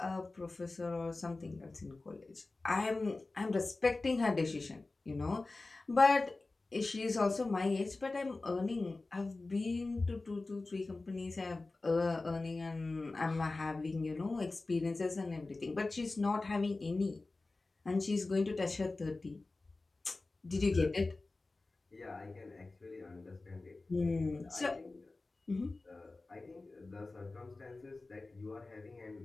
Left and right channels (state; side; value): quieter; right; 3.3 dB